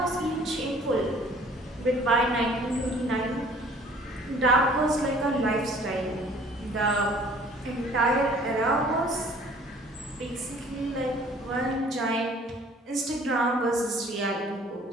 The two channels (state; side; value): normal; both; correlation 0.53